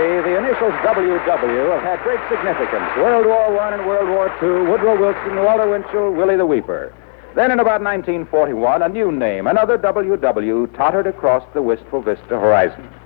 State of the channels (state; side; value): silent; right; 65 dB below the other